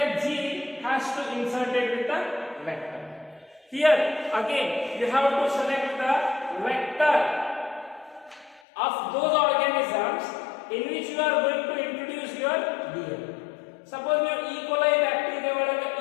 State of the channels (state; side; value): drops out; right; at 8.6 s